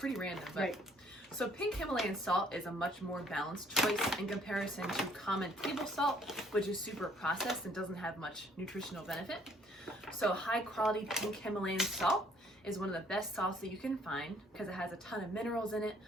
random, but right. So pink Himalayan salt is a much more balanced choice in comparison to common table salt, which is super processed and doesn't have much nutritional benefit. So high quality pink Himalayan salt is one of the best salts that you can find because it has a ton of minerals in it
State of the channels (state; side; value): normal; both; correlation 0.62